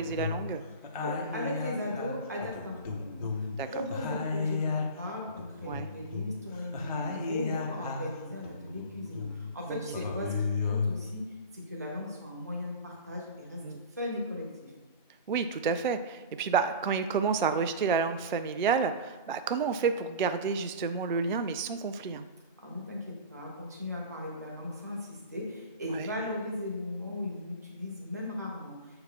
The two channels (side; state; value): both; inverted; correlation -0.31